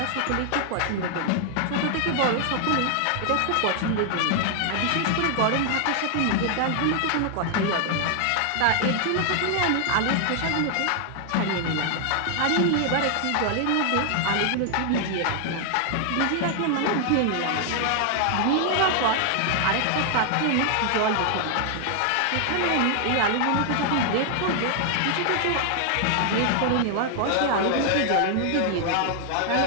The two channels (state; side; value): different; both; correlation 0.00